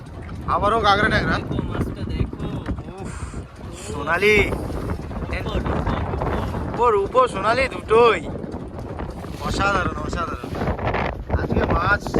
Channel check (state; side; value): identical; both; correlation 1.00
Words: আবারও কাঁকড়া ট্যাংরা। উফ, সোনালি উপর সোনালি দুটোই অসাধারণ অসাধারণ। আজকে মাছ